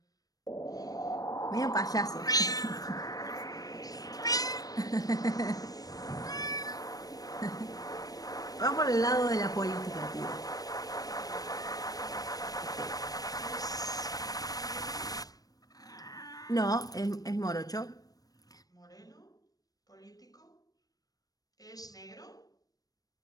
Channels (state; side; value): late; right; 0.18 ms